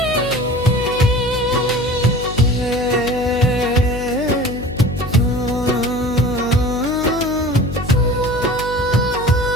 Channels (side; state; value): left; noise; hum, 11 dB below the sound